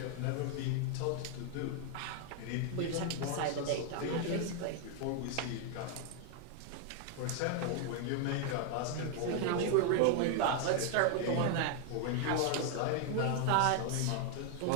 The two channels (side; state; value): both; different; correlation 0.00